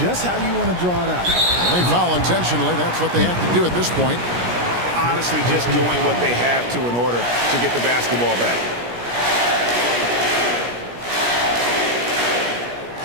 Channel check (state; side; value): late; left; 17 ms